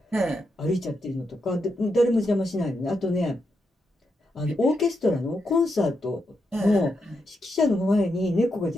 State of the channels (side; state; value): both; normal; correlation 0.83